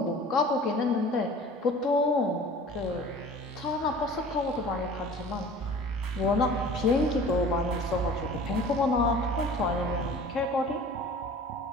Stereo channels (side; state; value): both; normal; correlation 0.44